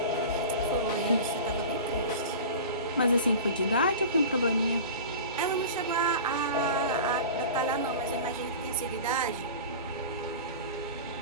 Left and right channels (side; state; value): both; inverted; correlation -0.34